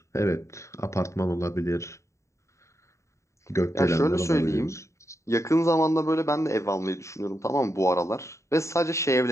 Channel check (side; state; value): right; late; 0.14 ms